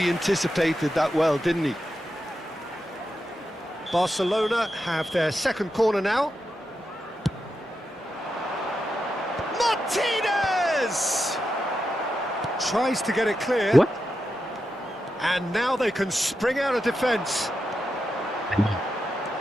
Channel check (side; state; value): both; normal; correlation 0.88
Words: anticipated that well, didn't he? Barcelona have their second corner now. Martinez! Tries to get it clear. what? And now they can spring out of defence.